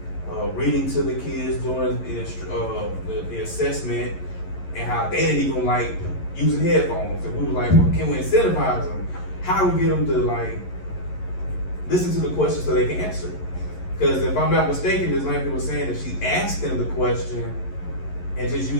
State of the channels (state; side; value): late; right; 11 ms